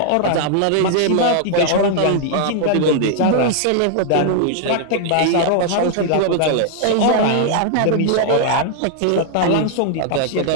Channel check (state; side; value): different; both; correlation 0.00